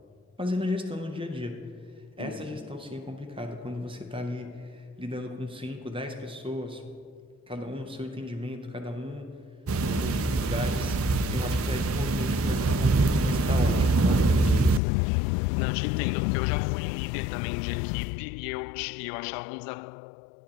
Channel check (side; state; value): right; drops out; at 14.8 s